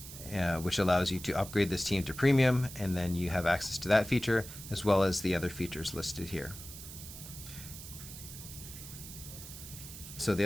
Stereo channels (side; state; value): right; noise; hiss, 13 dB below the sound